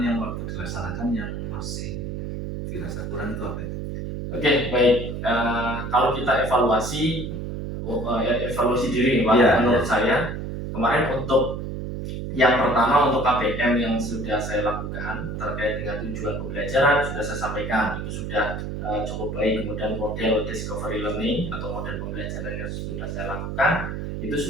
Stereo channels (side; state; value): right; noise; hum, 5 dB below the sound